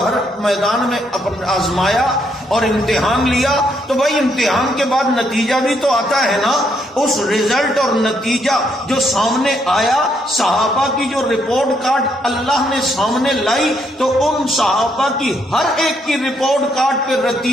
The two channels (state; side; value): normal; both; correlation 0.74